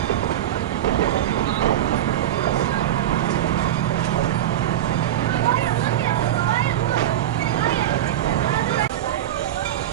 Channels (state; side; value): quieter; left; 12.0 dB